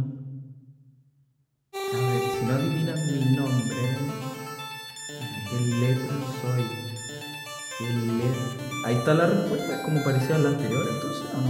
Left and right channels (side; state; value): both; identical; correlation 1.00